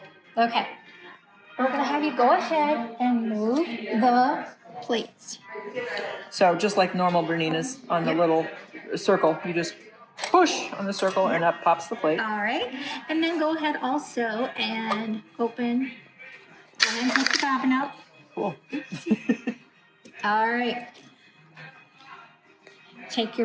Okay. We're going to have you go ahead and move the plates. So just like normal Bernina's on the little circle, you just push on the circle and up pops the plate. All right. And then go ahead also and open and take the bobbin out. Cool. All right. Take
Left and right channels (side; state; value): both; identical; correlation 1.00